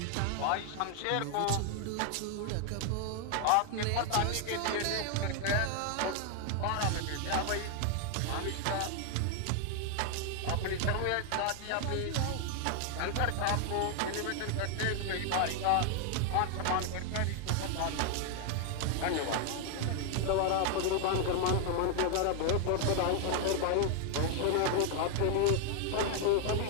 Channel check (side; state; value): both; different; correlation 0.00